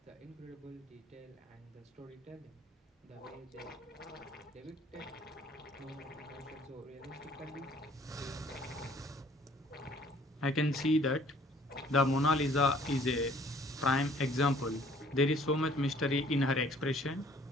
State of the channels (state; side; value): normal; both; correlation 0.58